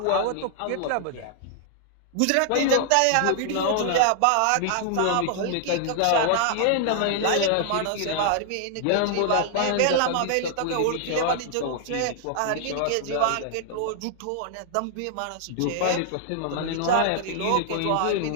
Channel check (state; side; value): different; both; correlation -0.01